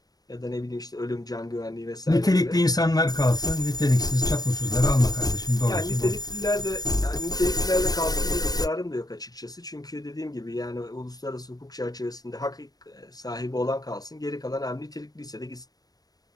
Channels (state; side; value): late; right; 0.19 ms